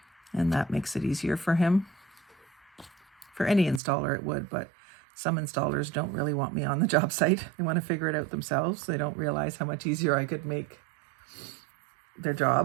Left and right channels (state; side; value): drops out; left; at 3.8 s